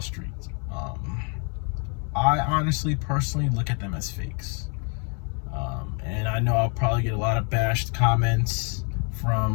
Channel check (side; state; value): right; quieter; 38.0 dB